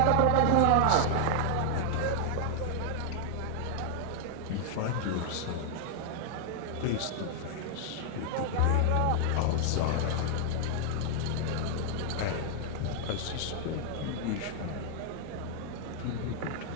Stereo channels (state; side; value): different; both; correlation 0.00